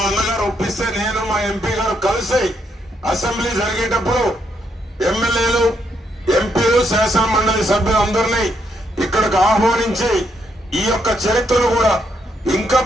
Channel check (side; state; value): both; normal; correlation 0.76